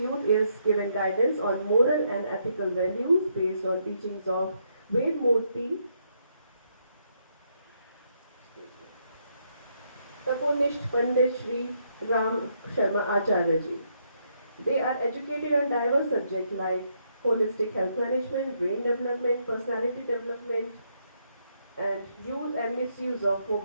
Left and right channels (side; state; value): both; inverted; correlation -0.75